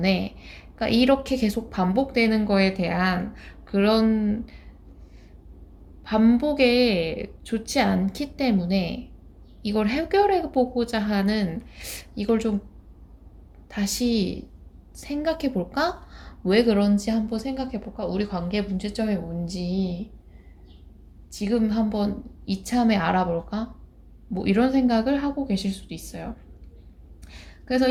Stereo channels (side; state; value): both; identical; correlation 1.00